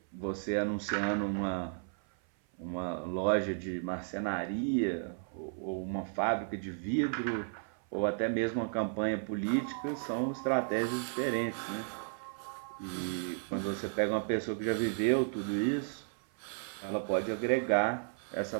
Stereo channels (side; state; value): left; silent; 55 dB below the other